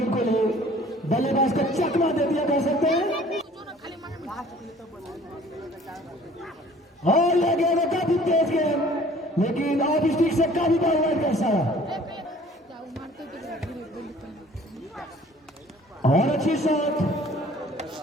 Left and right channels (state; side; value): normal; both; correlation 0.52